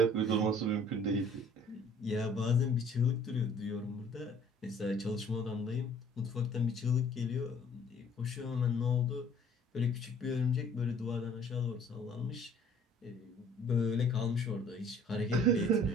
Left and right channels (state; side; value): normal; both; correlation 0.55